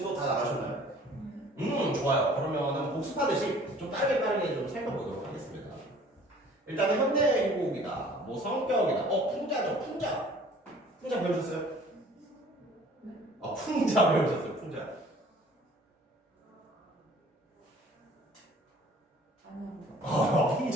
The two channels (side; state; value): both; normal; correlation 0.51